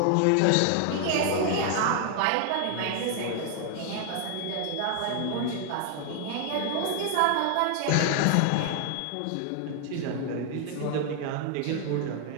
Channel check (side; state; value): both; different; correlation 0.00